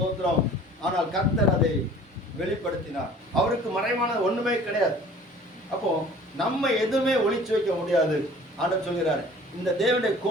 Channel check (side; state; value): both; normal; correlation 0.48